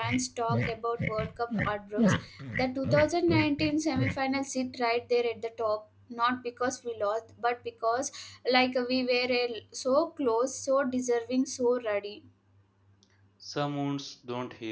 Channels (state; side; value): identical; both; correlation 1.00